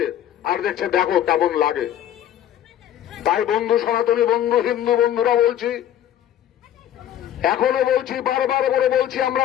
আর দেখছে, দেখো কেমন লাগে। তাই বন্ধু, সনাতনী বন্ধু, হিন্দু বন্ধুরা বলছি, এখনো বলছি, বারবার করে বলছি, আমরা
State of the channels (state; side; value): quieter; right; 11.2 dB